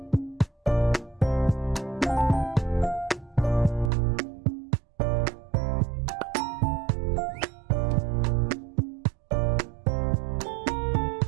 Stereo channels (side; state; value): left; drops out; at 3.9 s